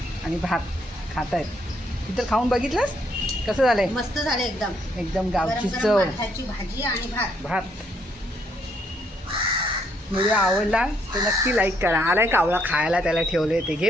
आणि भात खात आहेत. इतर खाऊन बघितलंस कसं झालंय? मस्त झाले एकदम. एकदम गावची गरम चव. गरम माठाची भाजी आणि भात. व्हिडिओ आवडला तर नक्की लाईक करा. आलाय कावळा खायला, त्याला ठेवले ते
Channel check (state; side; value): normal; both; correlation 0.71